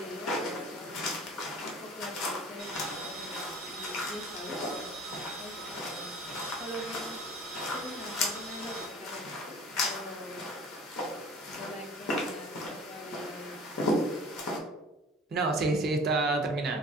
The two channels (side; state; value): both; normal; correlation 0.44